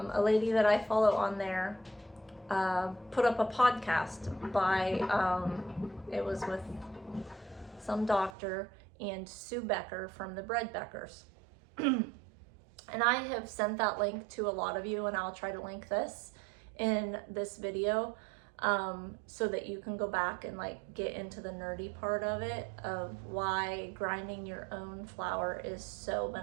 lady that I follow on there put up a podcast by, it was with some doctor and Sue Becker from the Bread Beckers. And I have sent that link to a lot of you, and I'll try to link this in this video so that you can go back and like get into the nerdy part of it, of why grinding your own flour is so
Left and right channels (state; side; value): drops out; left; at 8.3 s